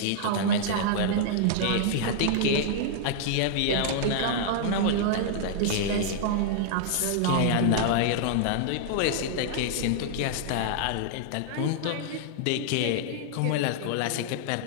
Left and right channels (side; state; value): both; different; correlation -0.01